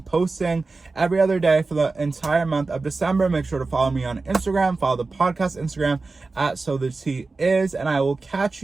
posting every other day for the entire month of December. Make sure to follow me on Instagram. Follow the podcast Instagram at So the Tea Is. And I will catch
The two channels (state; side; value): quieter; left; 3.8 dB